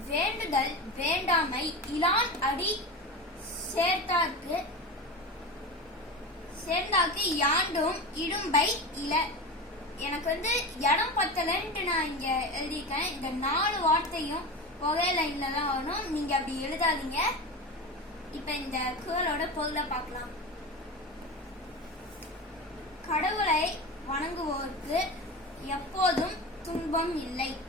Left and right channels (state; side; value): normal; both; correlation 0.26